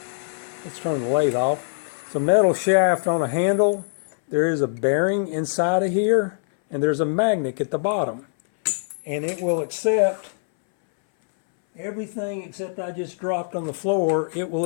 Let's turn the lathe off. It's a metal shaft on a handle. There is a bearing inside of here, and there's a magnet at the bottom, and it will accept everything except I just dropped on the floor. It will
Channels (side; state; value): right; silent; 63 dB below the other